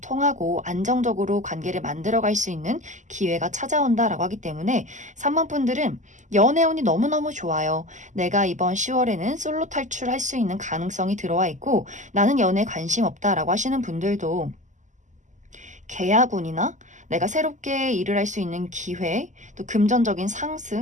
통하고 안정적으로 관계를 만들어갈 수 있는 기회가 찾아온다라고 하기 때문에 3번 분들은 연애운이 너무너무 좋아요. 내가 이번 10월에는 솔로 탈출할 수 있는 가능성이 들어와 있고 나는 연애에 관심 없다라고 하시는 분들도 계약운이나 내가 새롭게 일을 할 수 있는 기회, 또 금전적인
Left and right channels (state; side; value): late; left; 0.35 ms